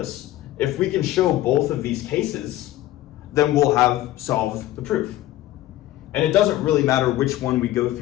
if we can show both of these cases, then we'll have solved the proof. And it doesn't really matter which one we go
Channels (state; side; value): quieter; right; 14.8 dB